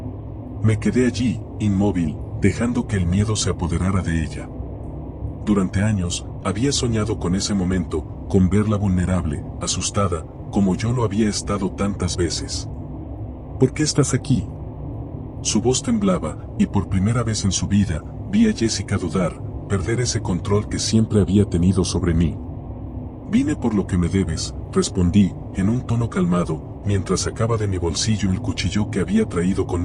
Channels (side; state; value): both; identical; correlation 1.00